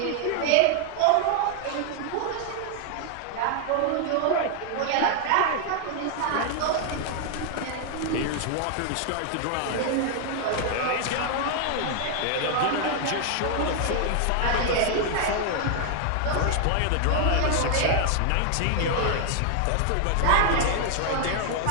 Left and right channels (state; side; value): different; both; correlation 0.00